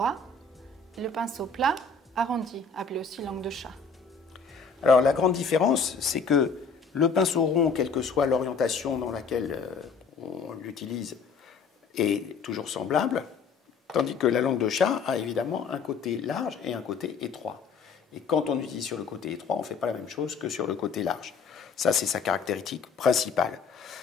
et le pinceau plat arrondi, appelé aussi langue de chat. Alors, la grande différence, c'est que le pinceau rond, quelle que soit l'orientation dans laquelle on l'utilise, est toujours semblable, tandis que la langue de chat a évidemment un côté large et un côté étroit. Et quand on utilise sur le côté étroit, on ne fait pas la même chose que sur le côté large. Ça, c'est sa caractéristique principale.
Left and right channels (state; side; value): quieter; right; 5.1 dB